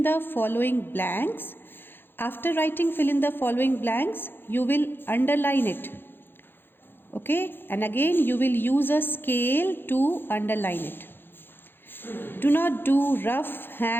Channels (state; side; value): late; right; 0.10 ms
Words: the following blanks. After writing fill in the following blanks, you will underline it. Okay, and again you will use a scale to underline it. Do not do rough